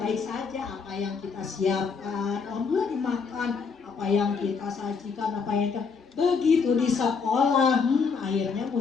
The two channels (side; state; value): right; quieter; 5.3 dB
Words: saja, apa yang kita siapkan, alhamdulillah dimakan, apa yang kita sajikan, apa yang kita begitu di sekolah, akhirnya